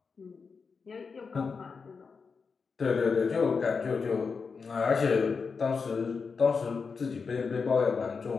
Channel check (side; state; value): right; quieter; 5.1 dB